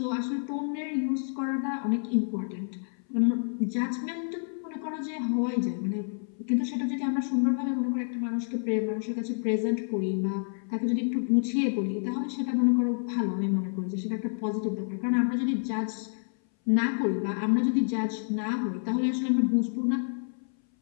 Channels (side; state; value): right; silent; 59 dB below the other